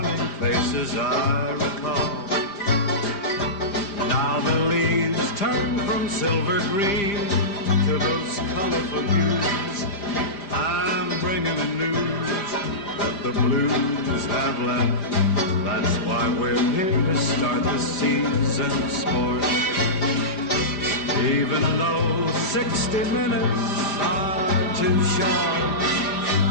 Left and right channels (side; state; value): right; late; 5.0 ms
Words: faces I recall. Now the leaves turn from silver green to those colorful hues. I'm bringing the news that the blues have left. That's why we're here to start the season sport. Even though 60 minutes are too short,